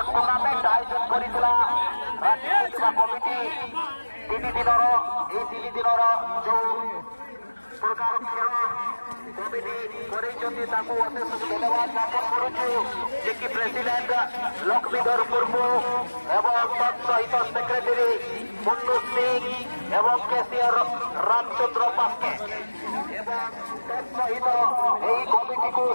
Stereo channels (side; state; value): both; inverted; correlation -1.00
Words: टूर्नामेंट आयोजन करितला राखी पूर्णिमा कमिटी 3 दिनर जो प्रकार खेल कमिटी करिसथि ताकू अशेष धन्यवाद ज्ञापन करूछु जे कि प्रेसिडेंट लक्ष्मीधर मुर्मू एवं सहित सेक्रेटरी मुन्नू सिंह एवं केसीआर रामचंद्र पास्के एवं सहित यही कमिटी को